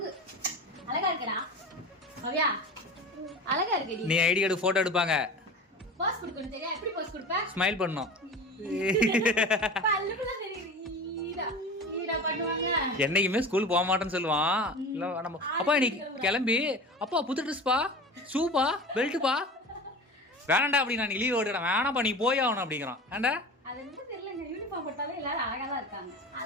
அழகா இருக்கடா மவியா, அழகா இருக்கடி. நீ ஐடி கார்டு போட்டோ எடுப்பாங்க, பாஸ் கொடுக்கணும். தெரியா எப்படி பாஸ் கொடுப்ப? ஸ்மைல் பண்ணணும். பல்லுக்குள்ள தெரியுது ஈடா பண்ணுவாங்க. என்னைக்குமே ஸ்கூல் போக மாட்டேன்னு சொல்லுவான். இல்ல நம்ம அப்பா இன்னைக்கு கிளம்பி அப்பா புது ட்ரெஸ் பா, ஷூப்பா, பெல்ட்டுப்பா. வேணாண்டா அப்படி நான் லீவ் ஓடுறேன். வேணாப்பா நீ போய் ஆகணும் அப்படிங்கிறான். ஏண்டா அது வந்து தெரியலங்க, யூனிஃபார்ம் போட்டாலே எல்லாரும் அழகா தான் இருக்காங்க.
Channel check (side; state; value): both; normal; correlation 0.33